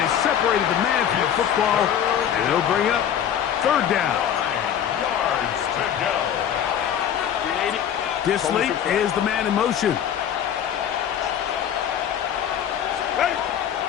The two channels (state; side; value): quieter; right; 9.4 dB